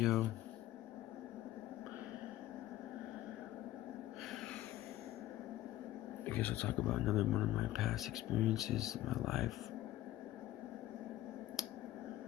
I guess I'll talk about another one of my past experiences in my life.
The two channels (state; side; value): quieter; right; 14.6 dB